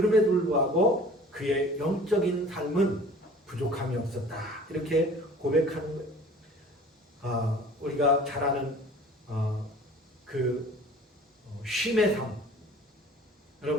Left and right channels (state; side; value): normal; both; correlation 0.46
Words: 불구하고 그의 영적인 삶은 부족함이 없었다. 이렇게 고백하는 거예요. 우리가 잘 아는 쉼의 삶.